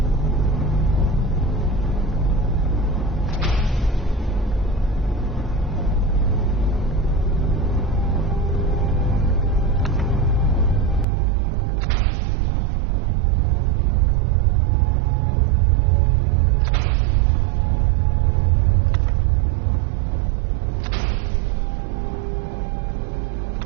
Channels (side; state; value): left; drops out; at 11.1 s